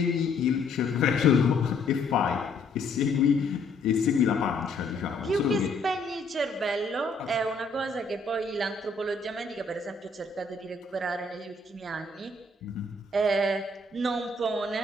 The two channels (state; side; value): quieter; right; 3.2 dB